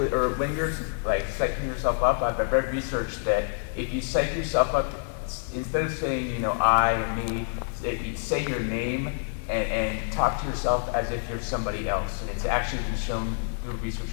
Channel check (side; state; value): right; silent; 60 dB below the other